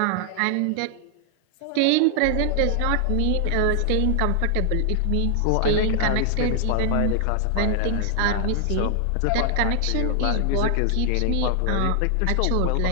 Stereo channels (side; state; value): both; different; correlation 0.00